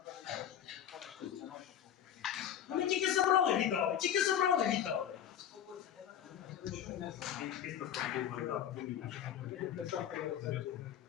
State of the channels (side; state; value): right; quieter; 9.9 dB